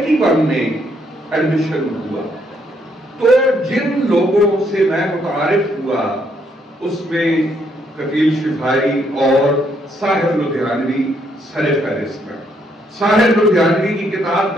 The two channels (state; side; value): normal; both; correlation 0.72